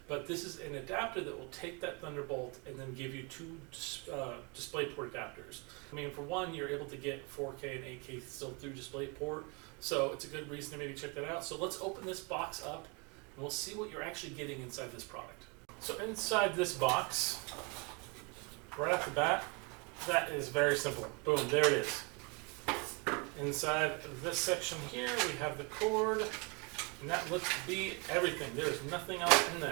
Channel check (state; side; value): quieter; left; 31.6 dB